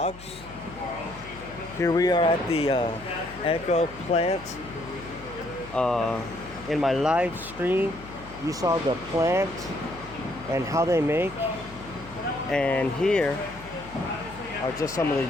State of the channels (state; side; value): noise; left; hum, 18 dB below the sound